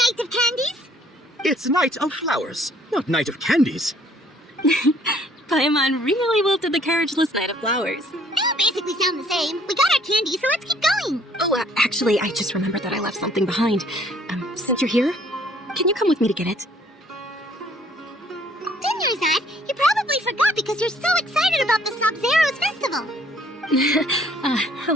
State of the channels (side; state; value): both; normal; correlation 0.61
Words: of Candies. It's Night of Flowers, not Night of Candies. Paimon really wilted the carriageless Knight of Flowers. They all basically sound the same. We got our candy, so let's keep going. Oh, actually, I just remembered that I left something behind. Since you're here, can you come with me to get it? Dinnerside, you probably forgot because you're so excited about the Sub-Zero's festival. How